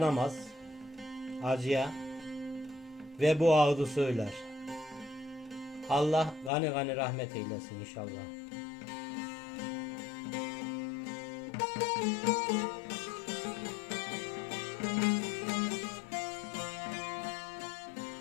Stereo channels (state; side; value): drops out; right; at 6.5 s